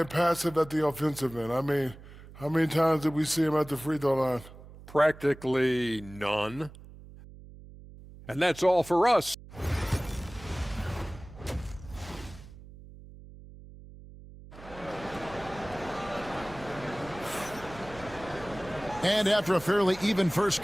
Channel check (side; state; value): right; noise; hum, 18 dB below the sound